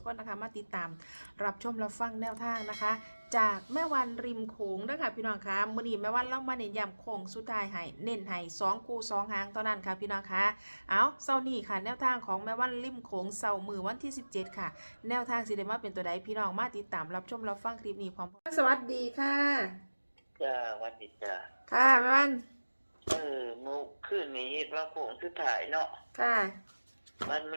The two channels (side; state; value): both; inverted; correlation -1.00